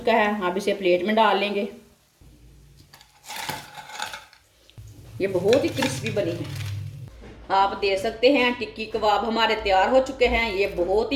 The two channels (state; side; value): identical; both; correlation 1.00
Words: है। आप इसे प्लेट में डाल लेंगे। ये बहुत ही क्रिस्पी बनी है। आप दे सकते हैं। टिक्की कबाब हमारे तैयार हो चुके हैं। ये बहुत